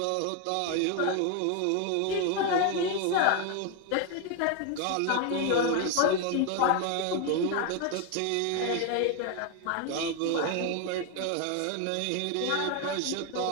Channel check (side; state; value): both; different; correlation 0.01